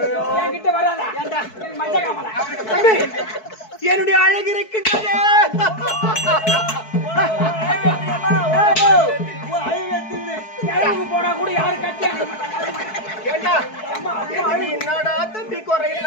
என்கிட்ட வராதா மஞ்ச காமல என்னுடைய அழகு இருக்கின்றது போனா கூட யாரும் கட்டி என்னடா தம்பி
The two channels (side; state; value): right; late; 4.6 ms